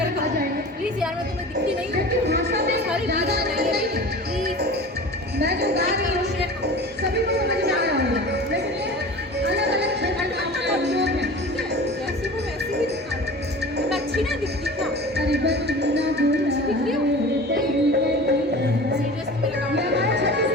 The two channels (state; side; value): normal; both; correlation 0.37